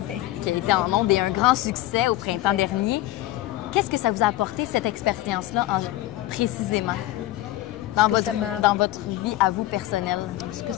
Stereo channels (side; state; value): right; quieter; 15.5 dB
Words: qui a été en ondes et un grand succès au printemps dernier. Qu'est-ce que ça vous a apporté, cette expérience-là, précisément, dans votre vie à vous personnelle? Ce que